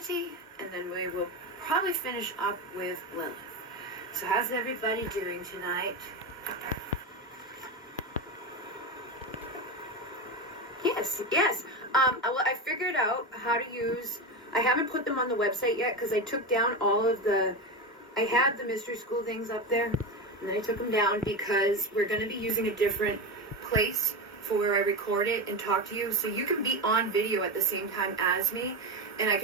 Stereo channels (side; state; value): both; normal; correlation 0.18